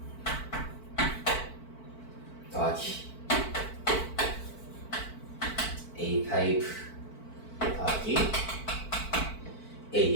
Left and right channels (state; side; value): late; right; 4.5 ms